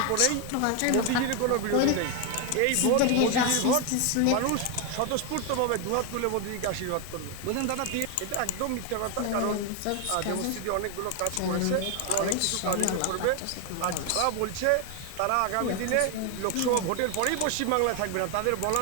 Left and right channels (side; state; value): both; different; correlation 0.01